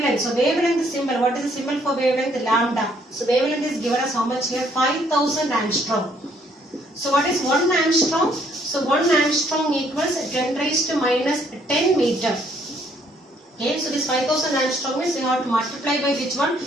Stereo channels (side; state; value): both; normal; correlation 0.66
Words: So wavelength symbol. What is the symbol for wavelength? Lambda. So wavelength is given as how much here? 5000 angstrom. So what is 1 angstrom? So 1 angstrom equals 10 raised to minus 10 meter. Okay, so this 5000 angstrom means we have to multiply by which one?